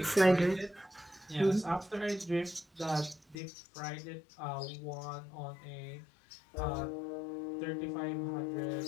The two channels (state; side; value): drops out; right; at 3.4 s